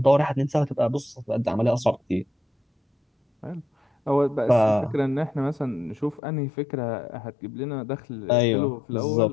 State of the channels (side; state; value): right; drops out; at 6.2 s